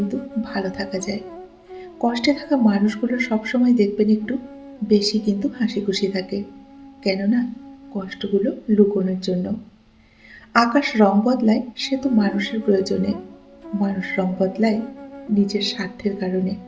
ভালো থাকা যায়। কষ্টে থাকা মানুষগুলো সবসময় দেখবেন একটু বেশি কিন্তু হাসি খুশি থাকে। কেননা কষ্টগুলো লুকোনোর জন্য। আকাশ রং বদলায় সে তো মানুষের প্রয়োজনে, মানুষ রং বদলায় নিজের স্বার্থের কারণে।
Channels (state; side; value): identical; both; correlation 1.00